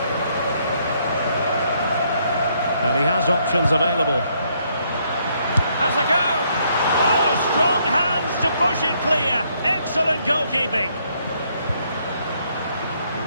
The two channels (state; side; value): inverted; both; correlation -0.71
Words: And he has options available. Has a go! Oh, strong hands to push it clear. Excellent goalkeeping.